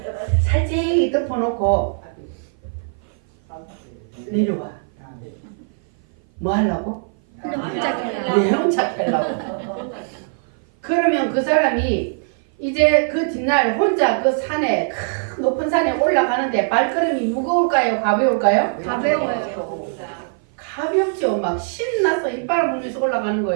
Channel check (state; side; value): silent; left; 56 dB below the other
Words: 살짝 덮어놓고 내려와. 뭐 하려고? 내 혼자 하려고. 그러면 그 사람이 이제 그 뒷날 혼자 그 산에 큰 높은 산에 올라가는데 발걸음이 무거울까요? 가벼울까요? 가벼워요. 가볍죠. 막 신나서 이빨을 물면서 올라가는